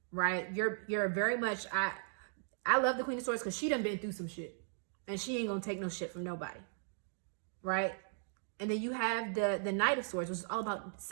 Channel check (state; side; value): silent; left; digital silence